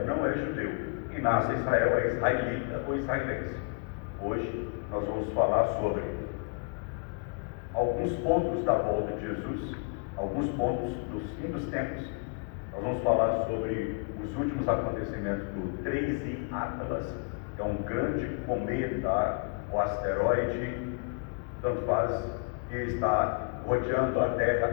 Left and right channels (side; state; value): right; quieter; 38.0 dB